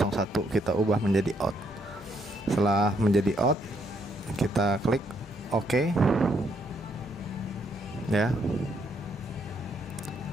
kita ubah menjadi out. Setelah menjadi out, kita klik OK ya.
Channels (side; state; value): both; normal; correlation 0.73